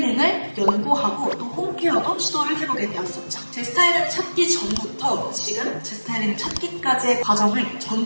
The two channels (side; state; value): both; inverted; correlation -1.00